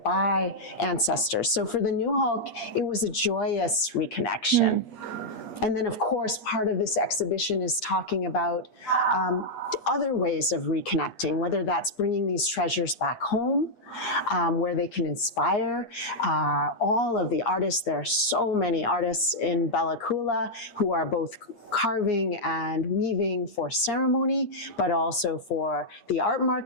ancestors. So for the Nuxalk, it was a joyous reconnection. And then, of course, part of this exhibition is talking about other ways of reconnecting, whether that's bringing these treasures back home, where they can inspire all of the artists. There are so many artists in Bella Coola who are both carving and weaving for ceremony, but also for the art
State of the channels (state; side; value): late; right; 8.6 ms